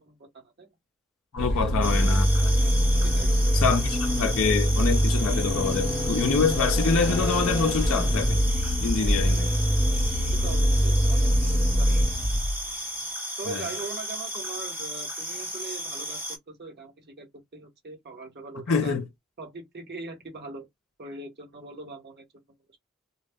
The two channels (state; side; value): normal; both; correlation 0.69